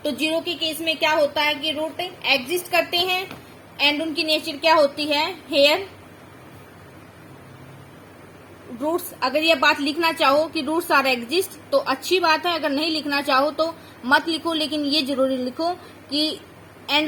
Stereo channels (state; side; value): identical; both; correlation 1.00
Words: तो 0 के केस में क्या होता है कि रूट एग्जिस्ट करते हैं एंड उनकी नेचर क्या होती है, हेयर रूट्स। अगर ये बात लिखना चाहो कि रूट्स आर एग्जिस्ट तो अच्छी बात है, अगर नहीं लिखना चाहो तो मत लिखो, लेकिन ये जरूरी लिखो कि and